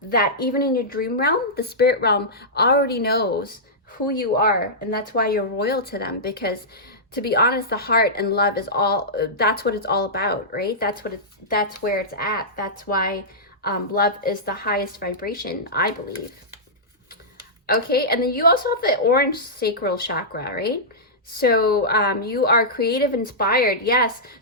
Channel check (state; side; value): normal; both; correlation -0.14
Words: that even in your dream realm, the spirit realm already knows who you are, and that's why you're royal to them, because to be honest, the heart and love is all, that's what it's all about, right? That's where it's at. That's why love is the highest vibration, I believe. Okay, and then you also have the orange sacral chakra, right? So you are creative, inspired, yes.